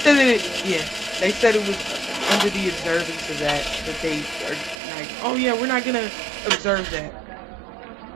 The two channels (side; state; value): left; drops out; at 4.8 s